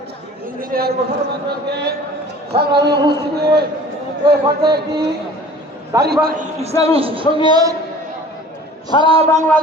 ইঞ্জিনিয়ার মোশাররফকে। সংগ্রামী উপস্থিতি, এই পর্যায়ে একটি ইসলামী সঙ্গীত সারা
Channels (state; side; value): normal; both; correlation 0.46